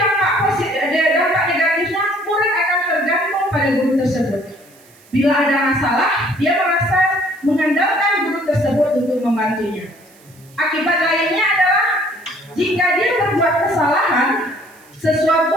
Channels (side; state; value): right; noise; hiss, 28 dB below the sound